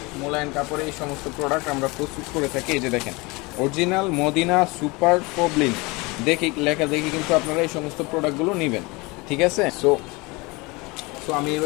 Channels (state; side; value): quieter; right; 25.2 dB